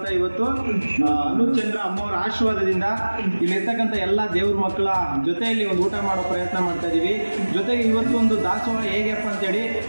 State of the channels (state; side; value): inverted; both; correlation -1.00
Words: ಇವತ್ತು ಅನುಚಂದ್ರ ಅಮ್ಮವ್ರ ಆಶೀರ್ವಾದದಿಂದ ಇಲ್ಲಿರ್ತಕ್ಕಂಥ ಎಲ್ಲ ದೇವ್ರ ಮಕ್ಕಳ ಜೊತೆಯಲ್ಲಿ ಒಂದು ಊಟ ಮಾಡೋ ಪ್ರಯತ್ನ ಮಾಡ್ತಾ ಇದ್ದೀವಿ. ಜೊತೆಗೆ ಇವತ್ತು ಒಂದು ದಾಸೋಹ ಹೇಗಪ್ಪ